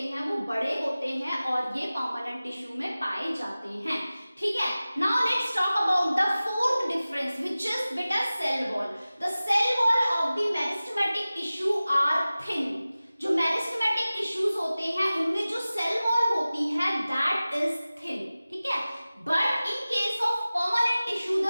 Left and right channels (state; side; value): inverted; both; correlation -0.97